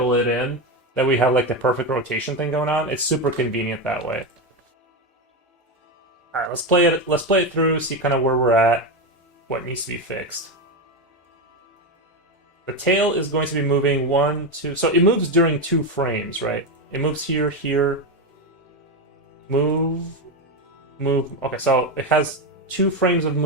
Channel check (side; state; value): both; normal; correlation 0.12